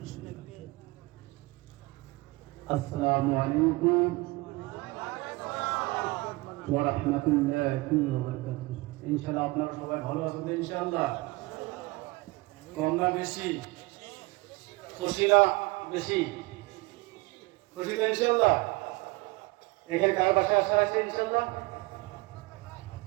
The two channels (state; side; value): quieter; left; 23.1 dB